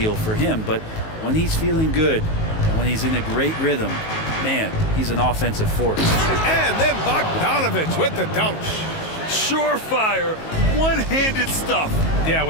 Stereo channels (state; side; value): late; right; 19 ms